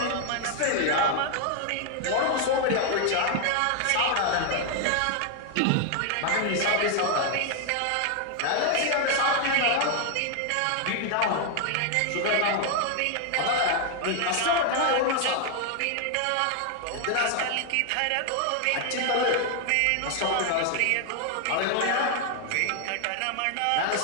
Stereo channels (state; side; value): different; both; correlation 0.00